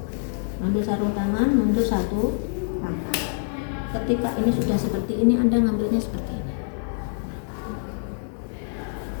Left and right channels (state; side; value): silent; right; 58 dB below the other